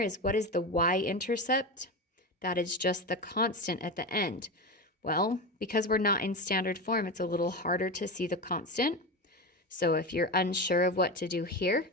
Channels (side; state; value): both; normal; correlation 0.21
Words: is, what is the y-intercept? That is just the constant at the end. Well, because we're not in standard form, it's a little harder to see the constant. So if you're unsure of what to do here,